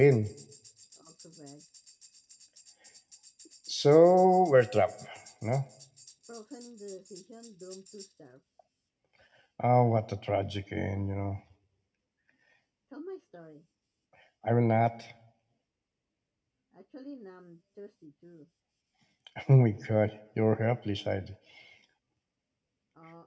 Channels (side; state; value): both; identical; correlation 1.00